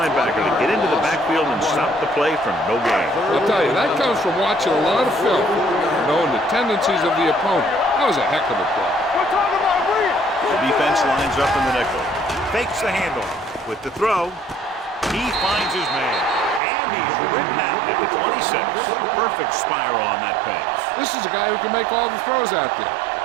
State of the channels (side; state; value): left; drops out; at 16.6 s